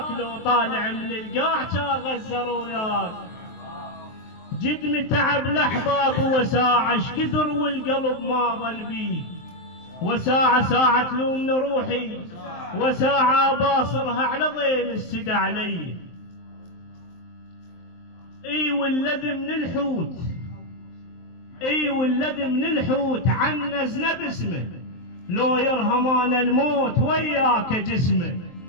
لو طالع من القاع كان غزر وياك. جد متعب الاحباب وساعة اش كثر والقلب ما ظل بيه. وساعة ساعة تلومني روحي، وساعة باصرها على ضيم السدى علي. اي والذي من الحوت، اي والذي من الحوت عنزنا باسمه. لو يرهمان الموت وياك جسمه.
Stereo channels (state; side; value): late; right; 23 ms